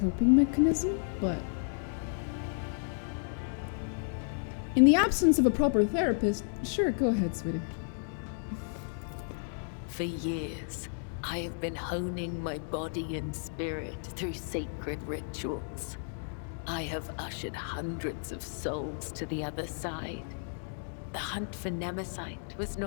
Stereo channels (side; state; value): right; silent; digital silence